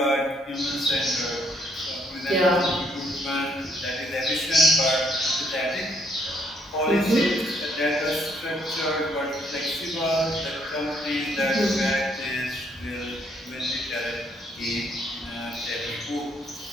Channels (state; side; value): normal; both; correlation 0.69